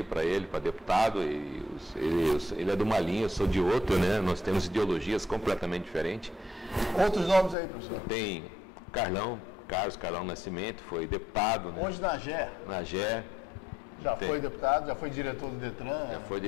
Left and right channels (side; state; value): right; drops out; at 7.6 s